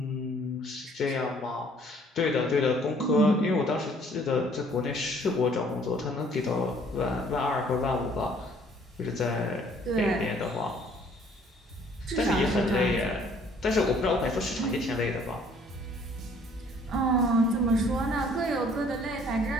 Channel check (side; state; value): both; normal; correlation 0.59